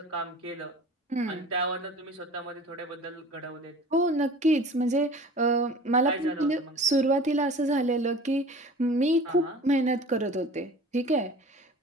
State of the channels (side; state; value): both; normal; correlation 0.42